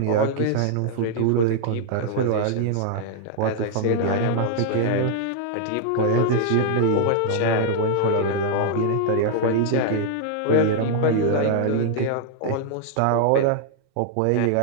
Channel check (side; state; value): both; different; correlation -0.01